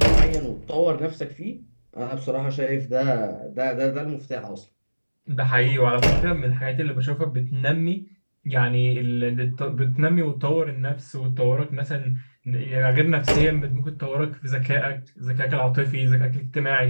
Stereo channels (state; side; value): inverted; both; correlation -1.00